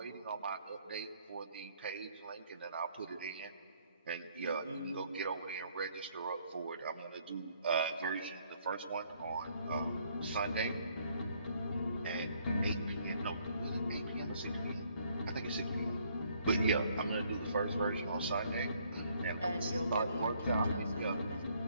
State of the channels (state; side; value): inverted; both; correlation -0.66